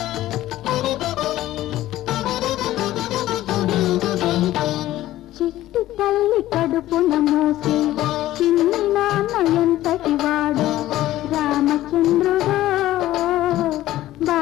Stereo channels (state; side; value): quieter; right; 14.8 dB